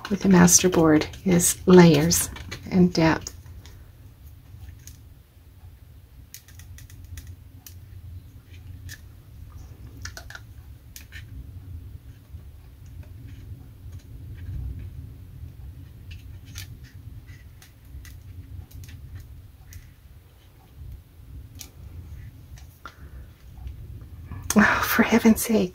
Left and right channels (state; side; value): identical; both; correlation 1.00